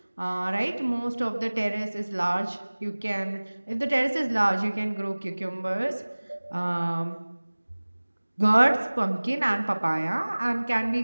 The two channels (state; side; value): inverted; both; correlation -1.00